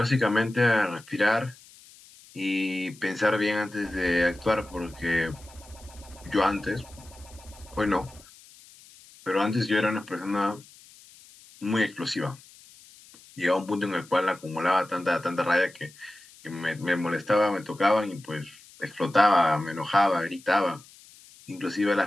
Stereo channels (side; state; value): left; noise; hiss, 23 dB below the sound